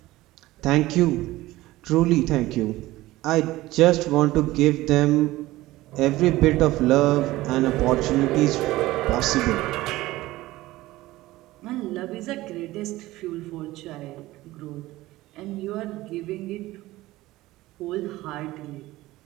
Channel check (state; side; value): quieter; left; 17.6 dB